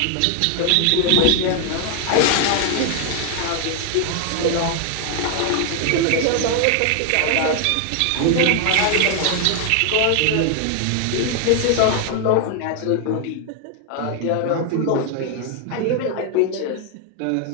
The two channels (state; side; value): different; both; correlation 0.00